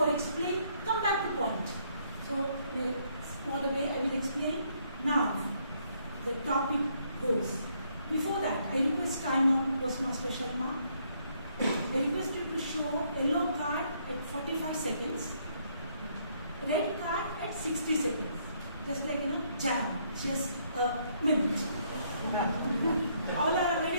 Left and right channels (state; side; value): inverted; both; correlation -0.70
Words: explain, come back to point. So in a smaller way I will explain. Now the topic goes. Before that, I request timer, Toastmaster Sharma. I request you to show yellow card at 45 seconds, red card at 60 seconds. Just like, jam, just a minute. All are